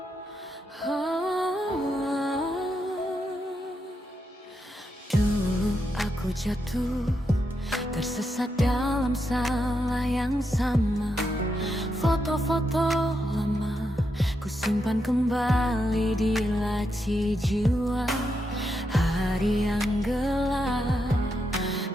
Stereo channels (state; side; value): normal; both; correlation 0.83